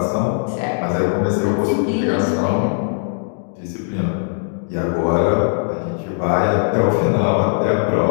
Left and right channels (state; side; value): silent; right; digital silence